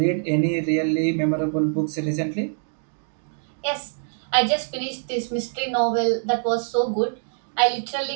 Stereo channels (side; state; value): left; silent; digital silence